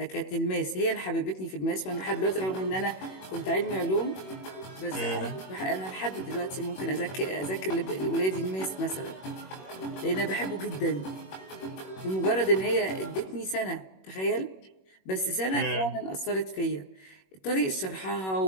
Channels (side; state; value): right; late; 21 ms